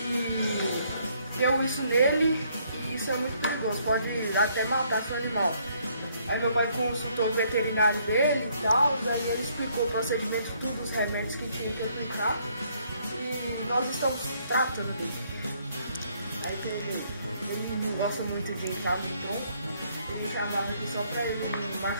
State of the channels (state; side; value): inverted; both; correlation -0.68